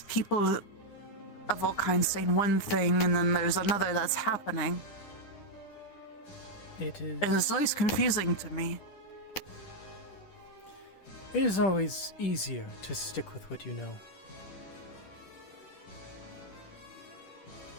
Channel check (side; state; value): right; late; 10 ms